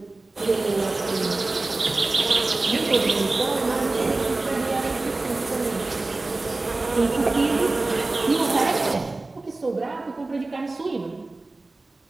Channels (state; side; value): quieter; left; 3.2 dB